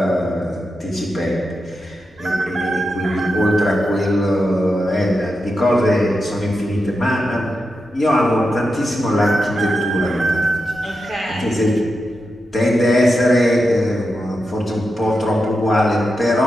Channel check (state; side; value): normal; both; correlation 0.88